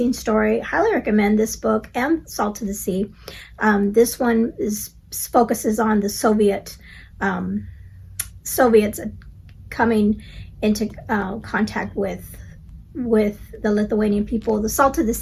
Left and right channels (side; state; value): both; identical; correlation 1.00